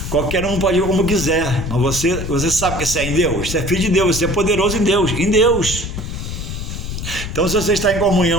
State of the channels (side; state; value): left; noise; rumble, 6 dB below the sound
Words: qualquer um pode ir como quiser, mas você sabe que você é em Deus, você é filho de Deus, você é poderoso em Deus. Então, se você está em